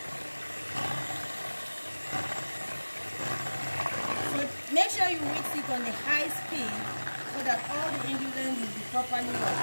Make sure you mix it on a high speed so that all the ingredients will be properly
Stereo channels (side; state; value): both; inverted; correlation -1.00